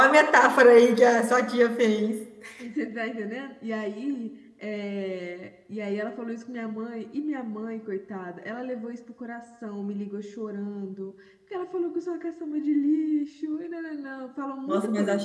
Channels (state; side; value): identical; both; correlation 1.00